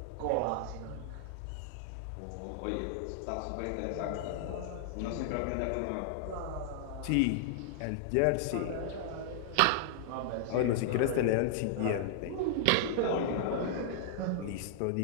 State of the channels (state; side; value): different; both; correlation -0.01